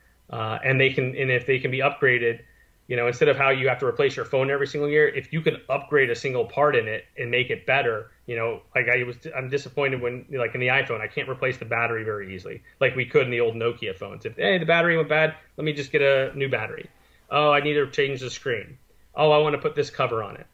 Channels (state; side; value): identical; both; correlation 1.00